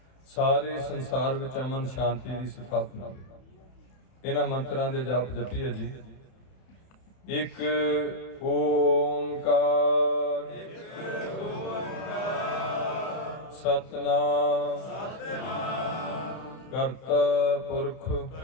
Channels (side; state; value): right; late; 31 ms